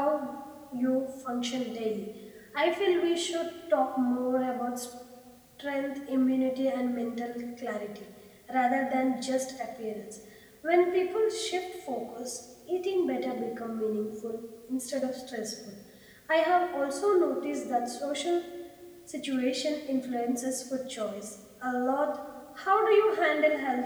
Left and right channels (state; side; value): identical; both; correlation 1.00